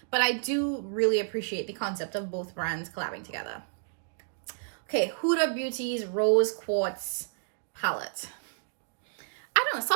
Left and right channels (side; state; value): left; silent; digital silence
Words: but I do really appreciate the concept of both brands collabing together. Okay, Huda Beauty's Rose Quartz palette. I don't know,